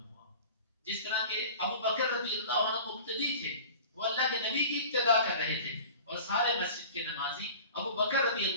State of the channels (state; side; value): inverted; both; correlation -0.40